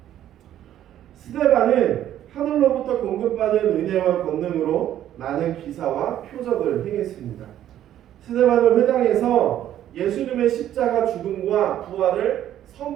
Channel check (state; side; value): quieter; left; 11.6 dB